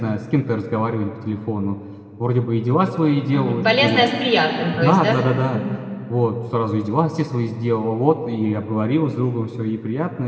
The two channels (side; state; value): both; identical; correlation 1.00